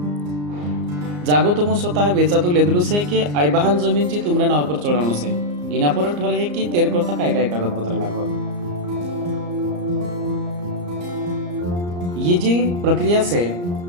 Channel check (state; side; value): late; left; 34 ms